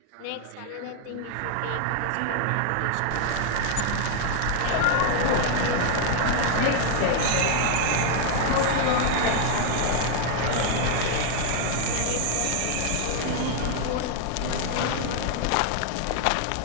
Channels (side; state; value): both; different; correlation 0.00